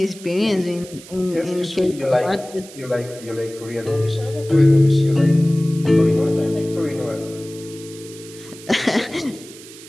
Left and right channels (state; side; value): noise; right; hiss, 18 dB below the sound